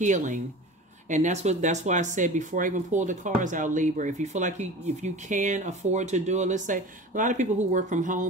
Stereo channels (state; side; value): normal; both; correlation 0.36